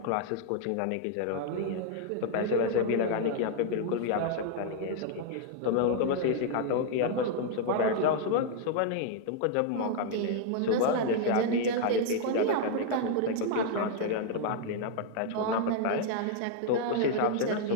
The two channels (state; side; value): different; both; correlation 0.00